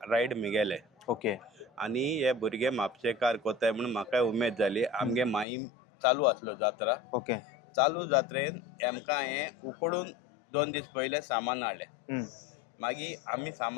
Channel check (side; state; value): right; drops out; at 5.5 s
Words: रायड मिगेले. ओके. आनी हे भुरगे म्हापशेकार कोताय म्हणून म्हाका उमेद जाली. आमगे माईम चालू आसलो जात्रा. ओके. चालू जात्रेन आमकां हें उकडून 2 दीस पयले सामान हाडलें. मागीर आमी